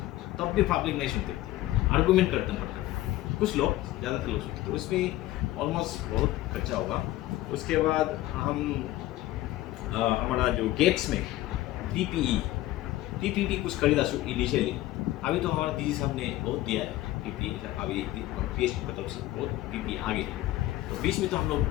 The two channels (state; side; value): quieter; right; 15.8 dB